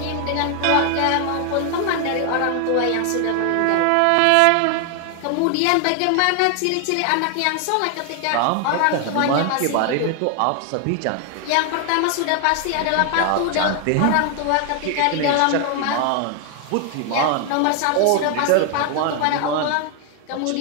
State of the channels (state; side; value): different; both; correlation 0.00